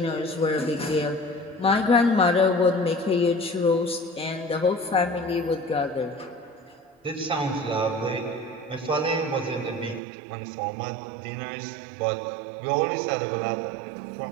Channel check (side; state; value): left; drops out; at 10.0 s